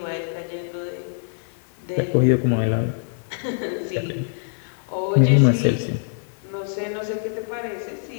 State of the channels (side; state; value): right; silent; 59 dB below the other